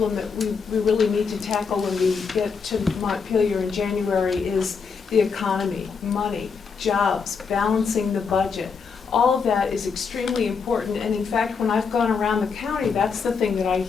that we really need to tackle when we get to Montpelier in January is the economy, money, jobs, balancing the budget. All of that is extremely important, and in fact, when I've gone around the county, that's the thing that I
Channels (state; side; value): quieter; right; 5.6 dB